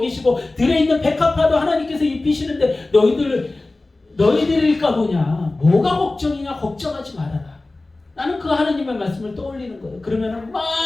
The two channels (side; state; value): right; quieter; 3.1 dB